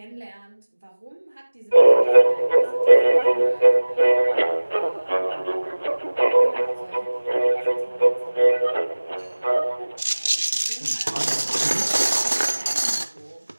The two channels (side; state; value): both; inverted; correlation -1.00